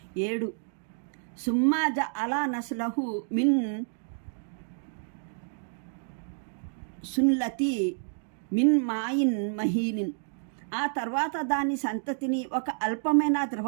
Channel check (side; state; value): left; silent; digital silence